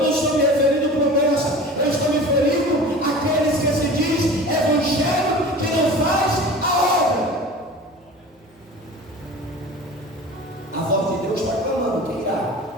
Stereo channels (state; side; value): normal; both; correlation 0.38